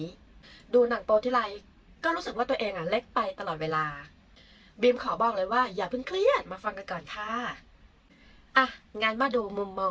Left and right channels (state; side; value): identical; both; correlation 1.00